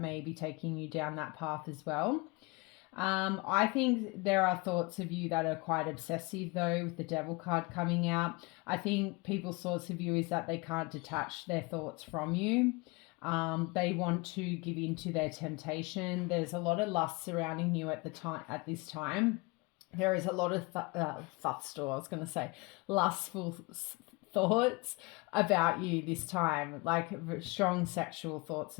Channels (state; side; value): quieter; right; 26.2 dB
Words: be taking you down that path as well. I think there are thoughts of you that are quite obsessive though, with the Devil card coming out. I think people's thoughts of you is that they can't detach their thoughts from you. They want to give in to their temptation. There's a lot of lust surrounding you at this time. There is a lot of lustful thoughts about you this time, like strong sexual thoughts